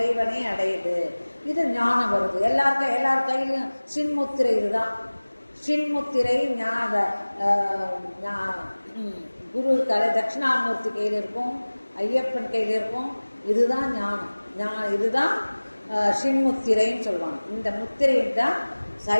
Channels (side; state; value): both; inverted; correlation -1.00